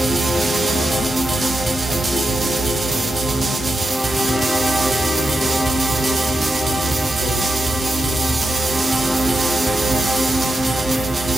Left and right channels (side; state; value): both; normal; correlation 0.88